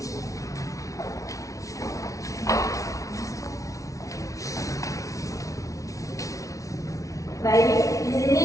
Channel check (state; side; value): late; right; 0.16 ms